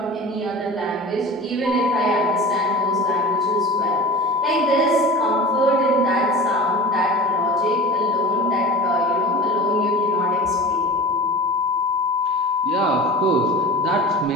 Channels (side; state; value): both; normal; correlation 0.35